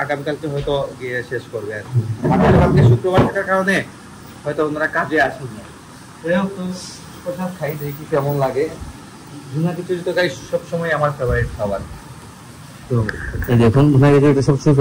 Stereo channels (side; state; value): both; identical; correlation 1.00